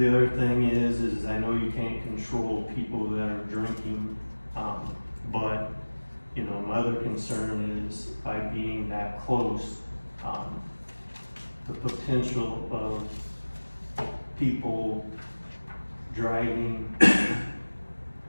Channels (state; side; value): inverted; both; correlation -1.00